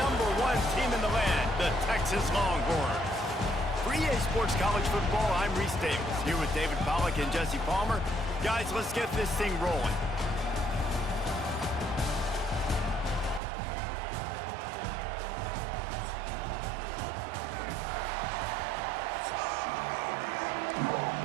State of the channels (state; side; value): drops out; left; at 13.4 s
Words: team in the land, the Texas Longhorns. For EA Sports College Football, I'm Reese Davis, here with David Pollack and Jesse Palmer. Guys, let's get this thing rolling.